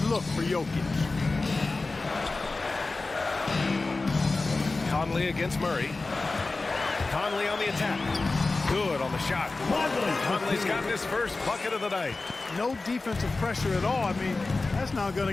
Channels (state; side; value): quieter; right; 3.5 dB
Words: look for Jokic. Conley against Murray. Conley on the attack. Good on the shot. Conley's got his first bucket of the night. No defensive pressure at all. I mean, that's not going